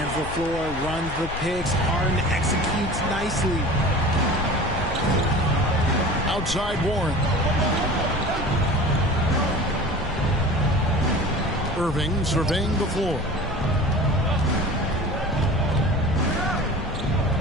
the floor, runs the picks. Harden executes nicely. Outside Warren. Irving surveying the floor.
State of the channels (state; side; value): noise; left; rumble, 9 dB below the sound